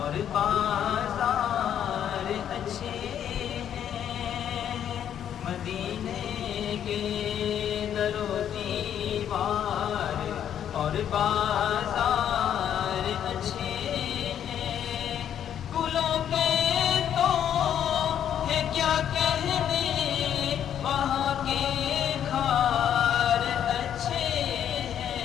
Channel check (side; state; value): right; quieter; 9.7 dB